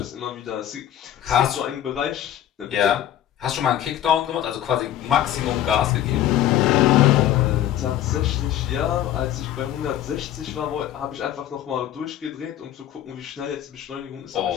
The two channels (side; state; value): right; quieter; 11.8 dB